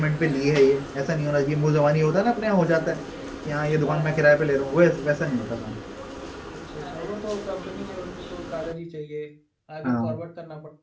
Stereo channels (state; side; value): identical; both; correlation 1.00